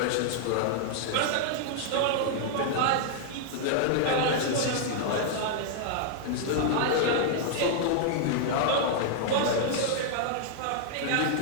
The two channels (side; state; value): both; different; correlation -0.01